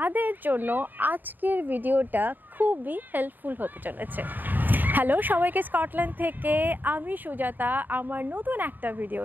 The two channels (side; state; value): left; late; 0.089 ms